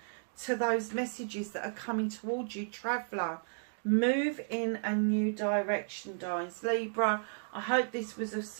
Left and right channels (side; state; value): left; silent; digital silence